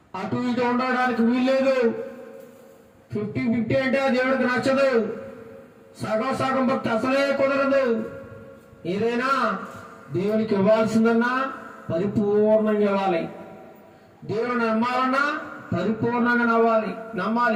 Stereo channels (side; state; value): both; identical; correlation 1.00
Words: అటు ఇటు ఉండడానికి వీల్లేదు. 50-50 అంటే దేవుడికి నచ్చదు. సగం భక్తి అసలే కుదరదు. ఏదైనా దేవునికి ఇవ్వాల్సిందన్నా పరిపూర్ణంగా ఇవ్వాలి. దేవుని నమ్మాలన్నా పరిపూర్ణంగా